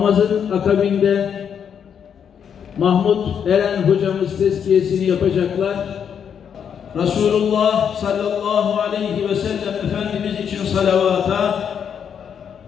akabinde Mahmut Eren hocamız tezkiyesini yapacaklar. Resulullah sallallahu aleyhi ve sellem Efendimiz için salavata,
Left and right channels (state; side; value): quieter; right; 7.8 dB